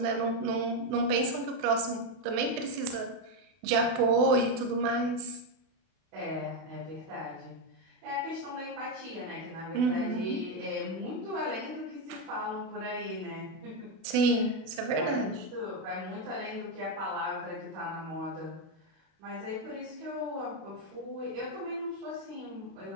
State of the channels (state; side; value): late; left; 32 ms